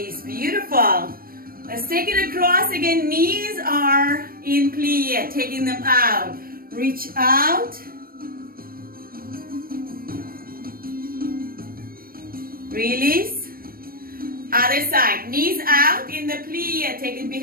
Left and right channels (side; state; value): left; late; 0.43 ms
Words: Beautiful. Let's take it across again. Knees are in plie. Taking them out. Reach out. Release. Other side. Knees out in the plie. Take it